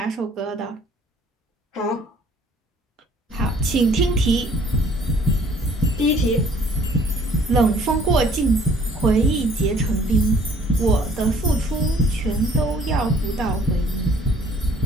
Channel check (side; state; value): both; normal; correlation 0.57